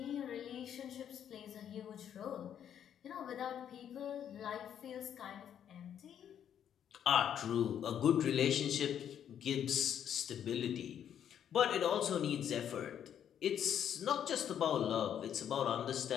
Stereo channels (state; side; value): quieter; right; 9.4 dB